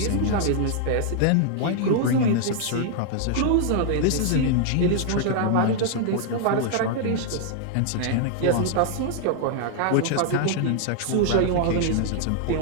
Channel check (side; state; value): both; different; correlation 0.00